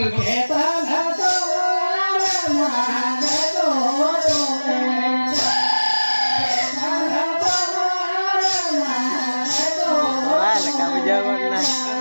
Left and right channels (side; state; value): both; inverted; correlation -1.00